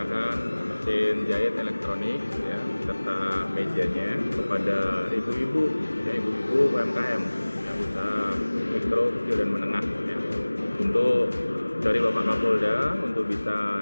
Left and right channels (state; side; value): inverted; both; correlation -1.00